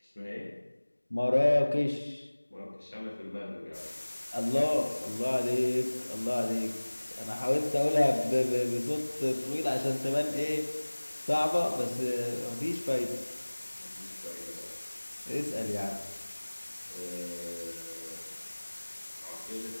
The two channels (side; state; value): both; inverted; correlation -1.00